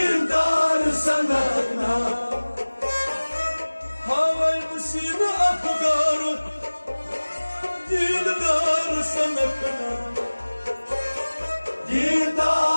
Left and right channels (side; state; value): both; inverted; correlation -1.00